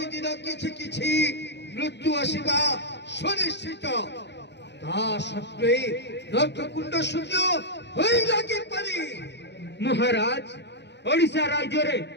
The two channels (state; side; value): late; right; 0.50 ms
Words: किछि किछि मृत्यु आसवा सुनिश्चित ता सत्वे नर्क कुंड शून्य होई लागी पारी महाराज ओडिशा राज्य रे